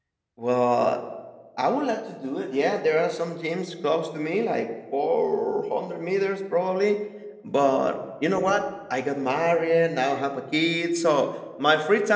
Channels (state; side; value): identical; both; correlation 1.00